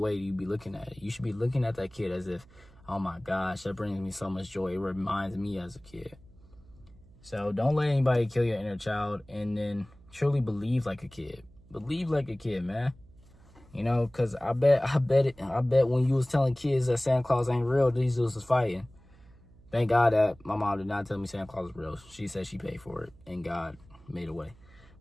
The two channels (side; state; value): right; noise; hum, 25 dB below the sound